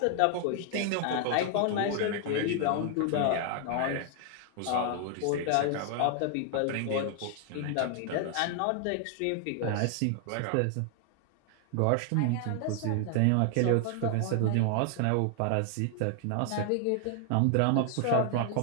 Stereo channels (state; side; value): different; both; correlation 0.00